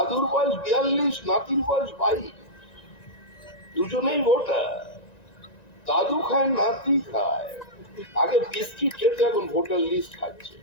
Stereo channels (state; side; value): late; right; 1.9 ms